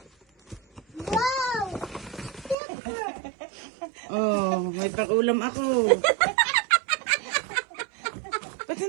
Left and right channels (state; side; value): drops out; left; at 2.6 s